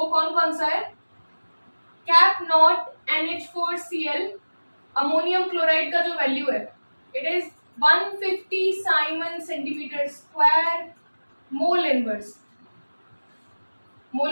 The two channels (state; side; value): inverted; both; correlation -1.00